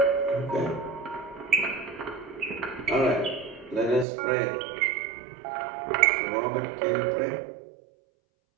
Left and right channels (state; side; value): drops out; left; at 4.0 s